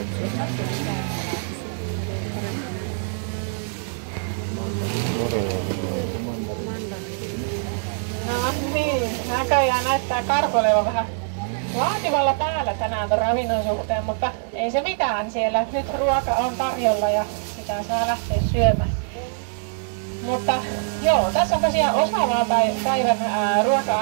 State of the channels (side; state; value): left; silent; digital silence